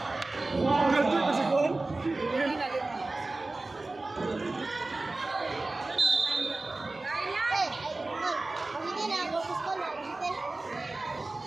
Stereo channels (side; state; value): left; quieter; 3.1 dB